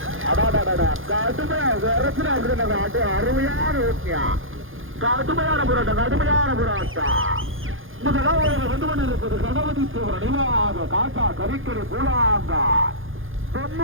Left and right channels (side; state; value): left; late; 0.59 ms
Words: அருமையான ஓட்டியா கடுமையான போராட்டம். முதலாவது வந்து கொண்டிருப்பது கணபதி தேவர் நினைவாக காட்டா கரிக்கரை பூலாங்கார்